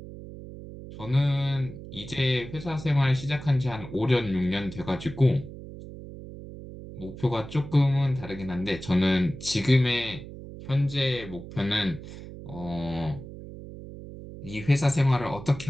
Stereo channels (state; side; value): noise; right; hum, 13 dB below the sound